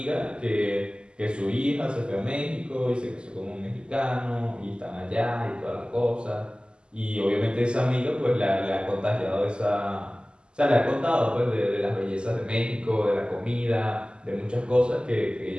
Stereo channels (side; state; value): left; late; 0.049 ms